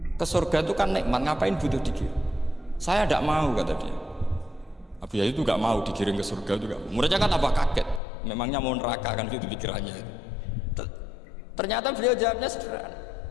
Ke surga itu kan nikmat, ngapain butuh digiring? Saya tidak mau, kata dia. Abu Yazid itu gak mau digiring ke surga juga. Muridnya kan tambah kaget, memangnya mau neraka kan gitu pikirannya itu. Ternyata beliau jawabnya sederhana,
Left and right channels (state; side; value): drops out; right; at 8.0 s